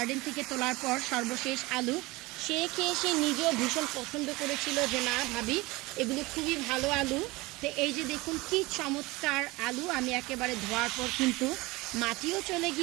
থেকে তোলার পর, সর্বশেষ আলু। সে খেয়ে সে নিজেও ভীষণ পছন্দ করেছিল যে না ভাবি, এগুলো খুবই ভালো আলু। তো এই যে দেখুন কি চমৎকার আলু, আমি একেবারে ধোয়ার পর কিন্তু মাটিও চলে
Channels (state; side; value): quieter; left; 22.2 dB